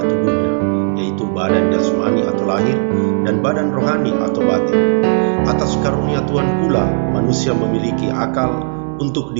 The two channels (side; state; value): left; silent; 69 dB below the other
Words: tubuhnya, yaitu badan jasmani atau lahir dan badan rohani atau batin. Atas karunia Tuhan pula, manusia memiliki akal untuk